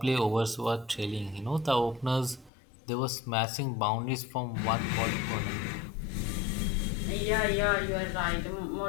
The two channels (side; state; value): right; drops out; at 2.5 s